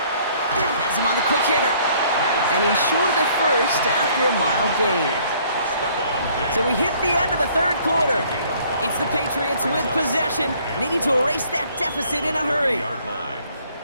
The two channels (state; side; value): inverted; both; correlation -0.60